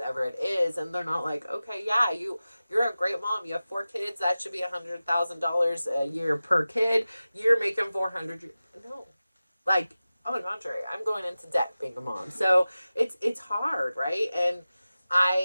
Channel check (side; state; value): both; inverted; correlation -0.95